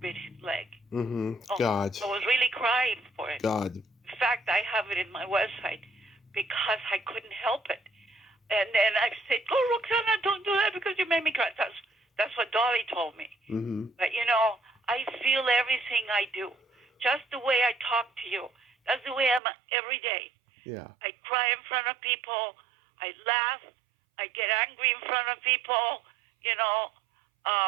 bit his leg. Mm-hmm. Oh, God. I was really crying for it. God. In fact, I have it in my website because I couldn't help it. And then I said, "Oh, Roxanna, don't do that because you made me cry." That's what Dolly told me. Mm-hmm. But I feel everything I do, just the way I talk to you. That's the way I'm every day. Yeah. I cry in front of people. I laugh. I get angry in front of people.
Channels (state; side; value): drops out; left; at 19.4 s